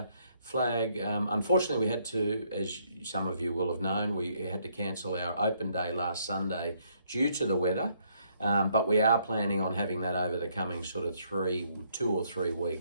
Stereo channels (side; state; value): both; inverted; correlation -0.70